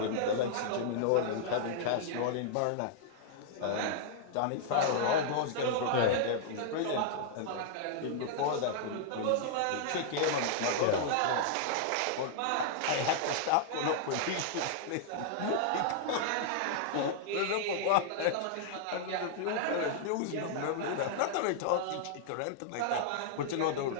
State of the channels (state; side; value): different; both; correlation -0.01